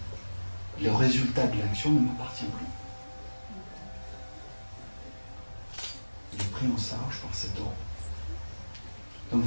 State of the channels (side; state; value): both; inverted; correlation -1.00